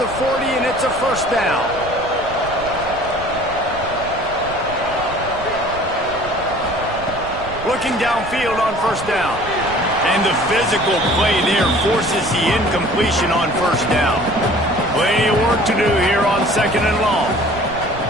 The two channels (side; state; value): right; noise; rumble, 14 dB below the sound